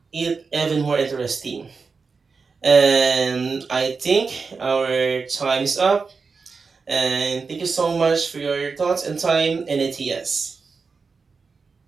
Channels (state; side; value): quieter; left; 4.8 dB